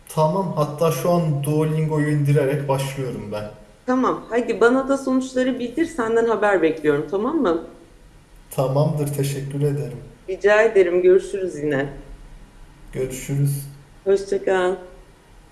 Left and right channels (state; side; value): identical; both; correlation 1.00